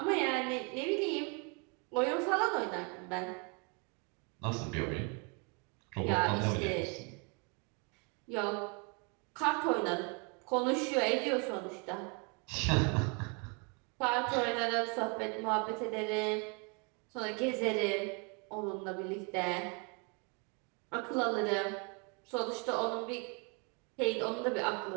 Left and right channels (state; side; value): quieter; left; 34.1 dB